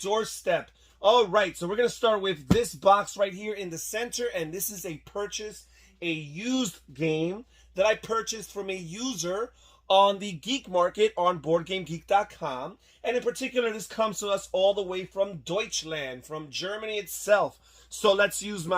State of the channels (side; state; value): both; identical; correlation 1.00